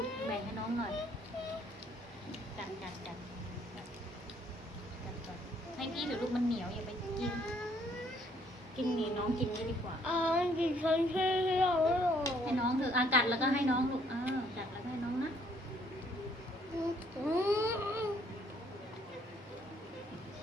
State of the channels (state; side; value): normal; both; correlation 0.65